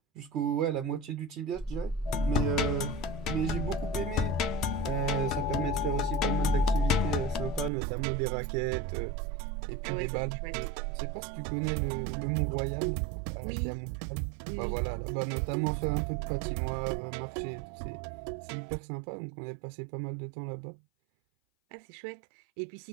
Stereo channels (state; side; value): drops out; left; at 7.7 s